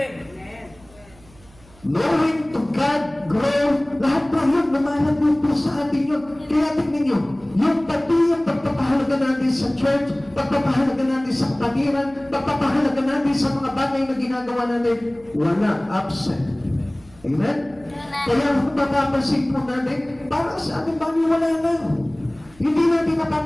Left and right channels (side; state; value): right; noise; hum, 26 dB below the sound